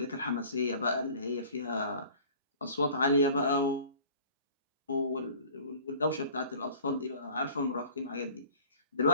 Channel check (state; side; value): inverted; both; correlation -0.46